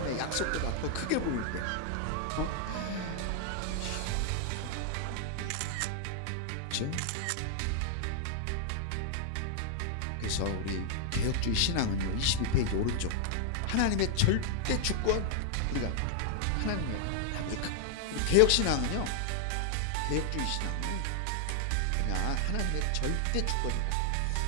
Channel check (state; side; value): different; both; correlation 0.00